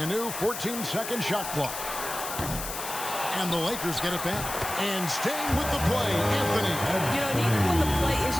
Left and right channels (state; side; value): noise; left; hiss, 7 dB below the sound